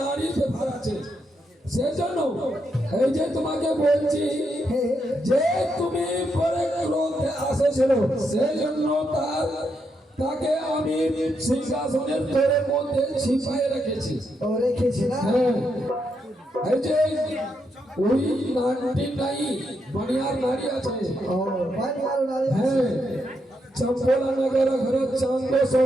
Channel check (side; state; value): both; normal; correlation 0.81